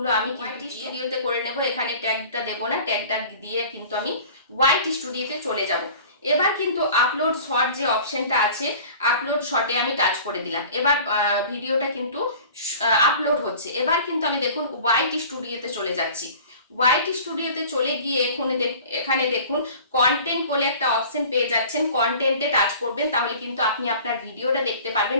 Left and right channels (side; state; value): both; inverted; correlation -0.43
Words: আমি কিন্তু ভিডিওতে করে নেব, এখানে ট্যাগটা দেবো না। ট্যাগটা দিয়ে কিন্তু আমি হোয়াইট স্টুডিওতে চলে যাব। এবার কিন্তু আপলোড শর্ট যে অপশনটা আছে, আপলোড শর্টে আমি টাচ করে দিলাম। এবার ভিডিওটা কিন্তু আপলোড হচ্ছে। এবার কিন্তু আমি দেখুন হোয়াইট স্টুডিওতে চলে যাচ্ছি। হোয়াইট স্টুডিওতে চলে গিয়ে এখানে দেখুন কন্টেন্ট বলে একটা অপশন পেয়ে যাচ্ছেন, কন্টেন্টে টাচ করবেন। তাহলে কিন্তু আপনি আপনার ভিডিওটা দেখতে